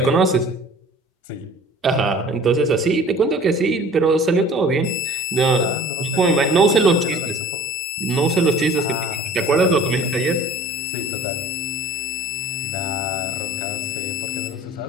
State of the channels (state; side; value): normal; both; correlation 0.47